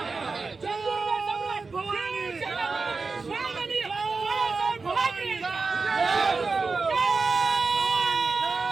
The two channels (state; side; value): quieter; left; 4.2 dB